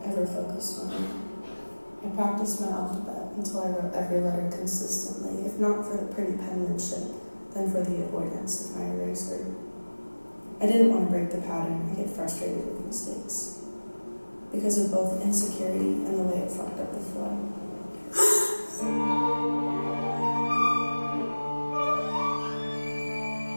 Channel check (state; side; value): inverted; both; correlation -1.00